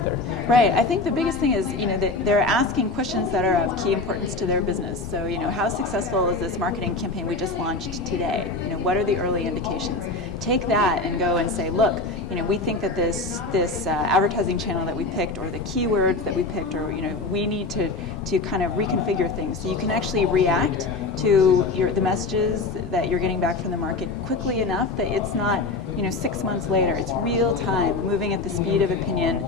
Right. I think the biggest thing is that they're asking questions that are of key importance to their business. So how successful is this marketing campaign we just launched today? What are the early indications? Take that and go and say, look, we think that this advertising channel that we picked, or the keywords that we picked, or we need to kind of reconfigure things so you can actually react to the messages that you're getting back from the market quickly enough that it's not 6 months later. It's real time, moving at the speed of opinion,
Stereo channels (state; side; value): quieter; right; 3.5 dB